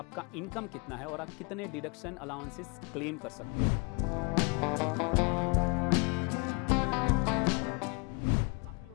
इनकम कितना है और आप कितने डिडक्शन अलाउंसेस क्लेम कर सकते हो। काफ़ी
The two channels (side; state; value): right; quieter; 33.4 dB